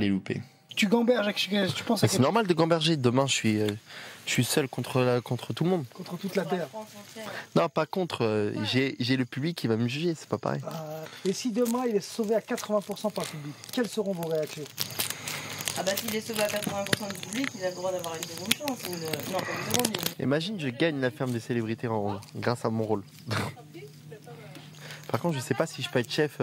louper. Tu gamberges, tu penses à C'est normal de gamberger. Demain, je suis seul contre tout le monde. contre toute la terre. Non, pas contre. J'ai le public qui va me juger, c'est pas pareil. Et si demain il est sauvé à 80% par le public, quelles seront vos réactions? Ah bah s'il est sauvé à 80% du public, il a le droit d'avoir une seconde chance. Non, pas une seconde. Imagine, je gagne la ferme des célébrités grâce à mon rôle. Par contre, je sais pas si je peux être chef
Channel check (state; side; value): identical; both; correlation 1.00